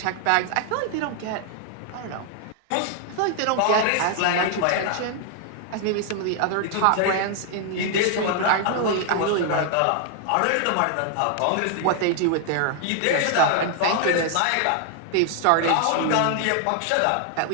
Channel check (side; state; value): both; different; correlation 0.00